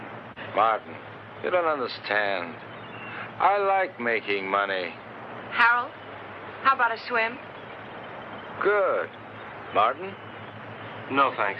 Martin, you don't understand. I like making money. Harold, how about a swim? Good. Martin? No,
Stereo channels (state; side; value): identical; both; correlation 1.00